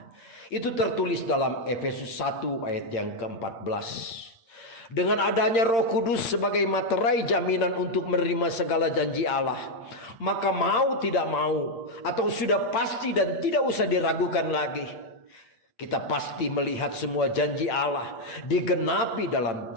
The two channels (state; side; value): late; right; 8.8 ms